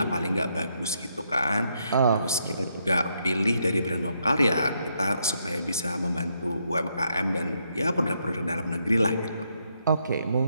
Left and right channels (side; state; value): both; inverted; correlation -0.77